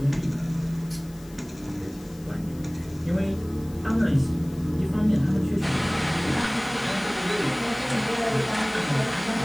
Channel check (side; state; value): left; noise; hiss, 23 dB below the sound